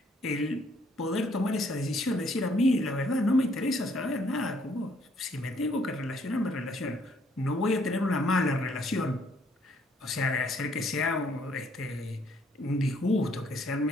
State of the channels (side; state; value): both; normal; correlation 0.66